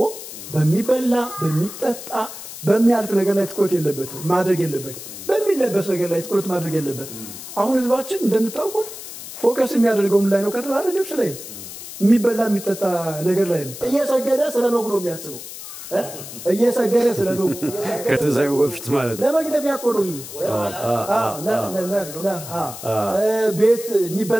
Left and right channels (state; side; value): noise; left; hiss, 12 dB below the sound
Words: በሚበላ በሚጠጣ በሚያልፍ ነገር ላይ ትኩረት የለበትም ማድረግ የለበትም። በሚለበስ ነገር ላይ ትኩረት ማድረግ የለበትም። አሁን ህዝባችን እንደምታውቁት ፎከስ የሚያደርገው ምን ላይ ነው ከተባለ ልብስ ላይ ነው። የሚበላ የሚጠጣ ነገር ላይ ነው። እየሰገደ ስለ በጉ ነው የሚያስበው። እየሰገደ ስለ በጉ ከትንሣኤው በፊት ማለት ነው። ለመግደፊያ እኮ ነው። ቤት